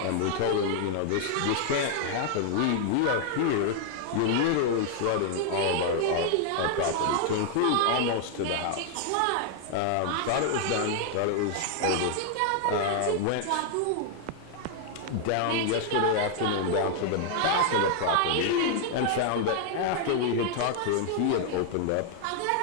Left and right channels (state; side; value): different; both; correlation 0.00